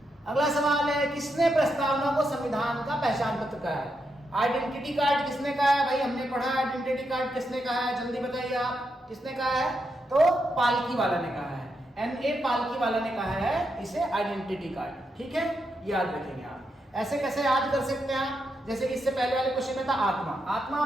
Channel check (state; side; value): normal; both; correlation 0.83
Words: अगला सवाल है, किसने प्रस्तावना को संविधान का पहचान पत्र कहा है? आइडेंटिटी कार्ड किसने कहा है? भाई हमने पढ़ा आइडेंटिटी कार्ड किसने कहा है, जल्दी बताइए आप, किसने कहा है? तो पालकी वाला ने कहा है, NA पालकी वाला ने कहा है इसे आइडेंटिटी कार्ड। ठीक है, याद रखेंगे आप। ऐसे कैसे याद कर सकते हैं आप? जैसे कि इससे पहले वाले क्वेश्चन में था आत्मा। आत्मा